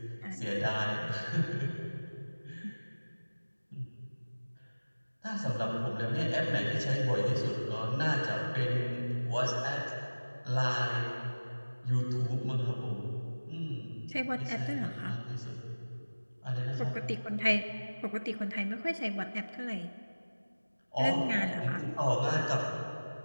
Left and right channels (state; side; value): inverted; both; correlation -1.00